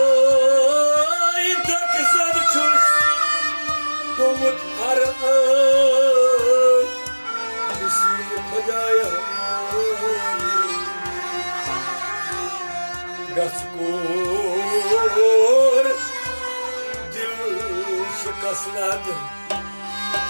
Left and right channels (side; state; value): both; inverted; correlation -1.00